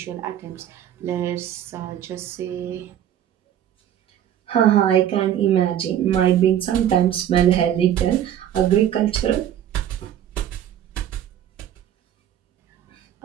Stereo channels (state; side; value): quieter; left; 10.6 dB